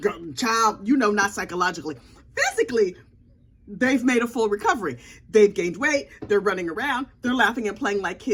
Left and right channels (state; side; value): identical; both; correlation 1.00